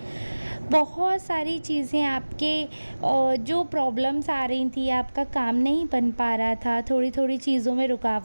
बहुत सारी चीज़ें आपके जो प्रॉब्लम्स आ रही थी, आपका काम नहीं बन पा रहा था, थोड़ी थोड़ी चीज़ों में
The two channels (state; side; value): inverted; both; correlation -1.00